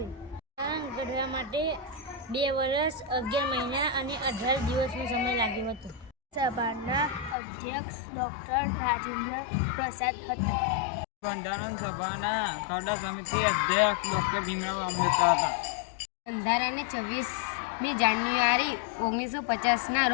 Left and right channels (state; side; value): drops out; right; at 7.4 s